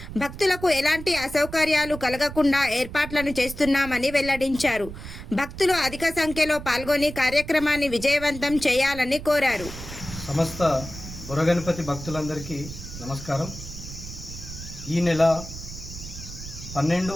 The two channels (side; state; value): right; noise; rumble, 11 dB below the sound